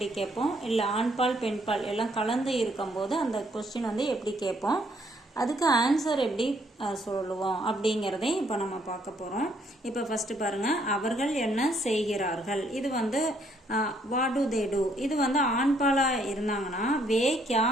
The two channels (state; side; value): normal; both; correlation 0.69